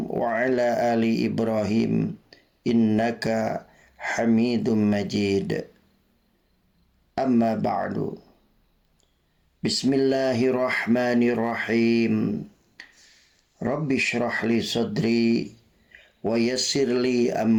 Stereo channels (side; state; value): both; identical; correlation 1.00